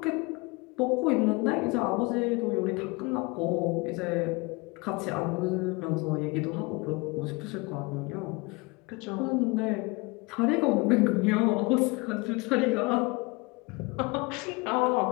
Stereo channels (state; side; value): quieter; right; 26.0 dB